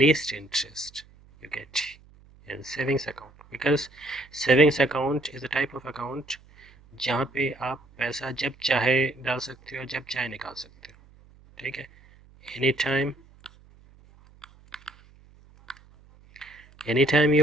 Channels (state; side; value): noise; right; hum, 26 dB below the sound